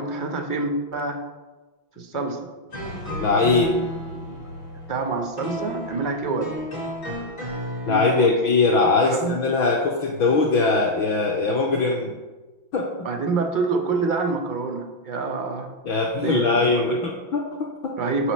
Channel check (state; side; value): late; right; 5.9 ms